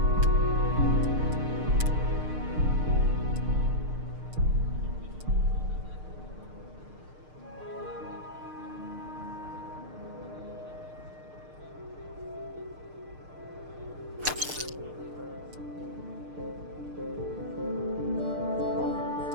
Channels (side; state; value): left; late; 6.6 ms